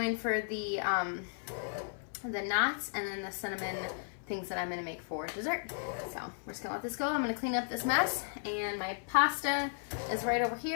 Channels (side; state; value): right; silent; 55 dB below the other